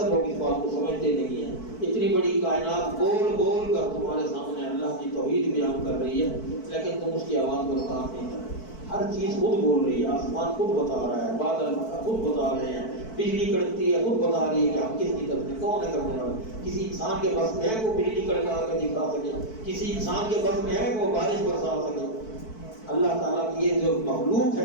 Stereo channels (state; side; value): late; right; 4.6 ms